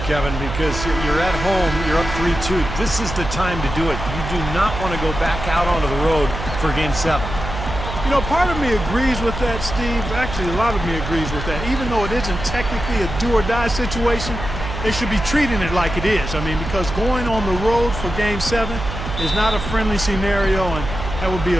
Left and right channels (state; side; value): noise; right; hum, 7 dB below the sound